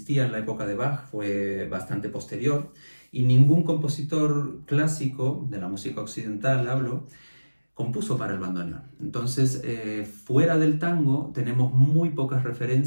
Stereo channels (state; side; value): inverted; both; correlation -1.00